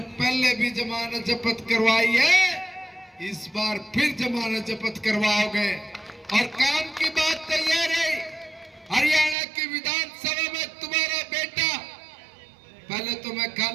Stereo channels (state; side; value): drops out; left; at 9.3 s